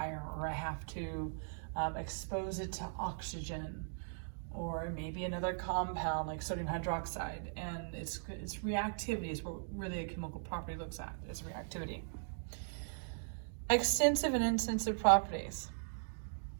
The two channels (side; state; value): left; silent; digital silence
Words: or I have to expose it to oxygen, or maybe another compound like sodium hydroxide, and it's reactivity is what really a chemical property looks at, is reactivity. Extensive and intensive properties.